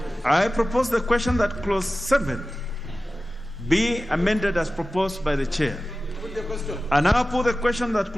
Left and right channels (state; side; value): normal; both; correlation 0.95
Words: I propose the question that clause 7 be amended as proposed by the chair. I now put the question that